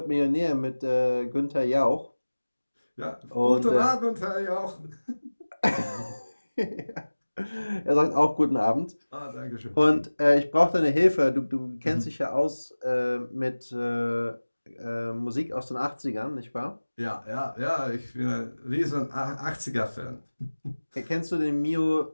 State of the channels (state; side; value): inverted; both; correlation -1.00